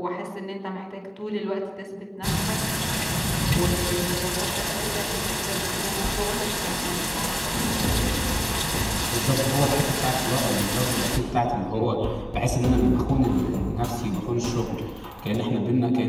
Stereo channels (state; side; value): identical; both; correlation 1.00